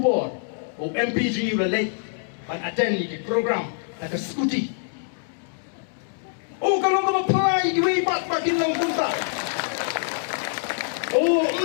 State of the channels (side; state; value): right; silent; digital silence